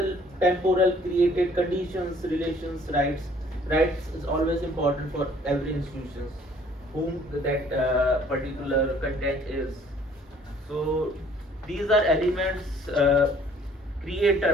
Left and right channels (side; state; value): both; normal; correlation 0.57